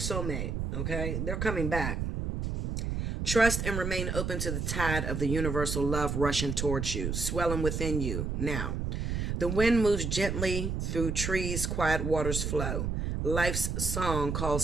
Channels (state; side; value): noise; right; rumble, 2 dB below the sound